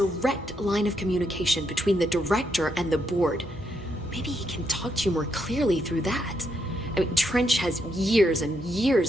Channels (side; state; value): both; normal; correlation 0.79